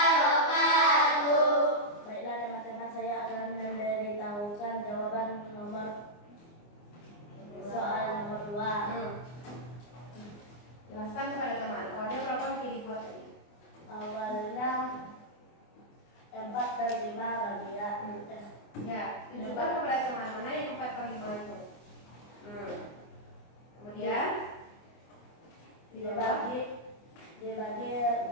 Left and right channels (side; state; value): right; late; 24 ms